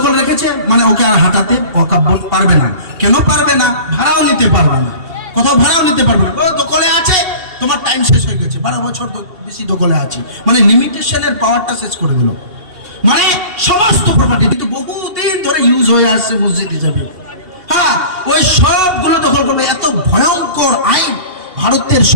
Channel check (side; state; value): left; late; 2.7 ms